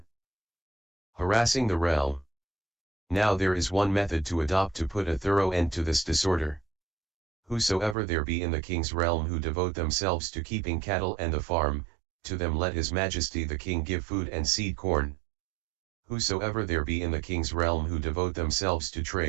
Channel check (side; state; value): left; drops out; at 8.0 s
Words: harassing the realm. Now there is one method to adopt to put a thorough end to this disorder. Whosoever there be in the king's realm who devote themselves to keeping cattle and the farm, to them let his majesty the king give food and seed corn. Whosoever there be in the king's realm who devote themselves to